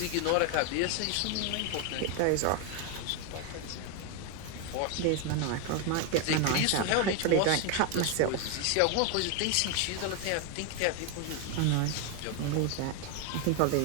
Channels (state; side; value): different; both; correlation 0.01